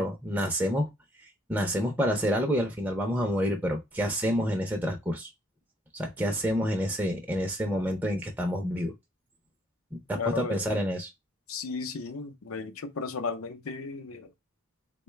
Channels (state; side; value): normal; both; correlation 0.66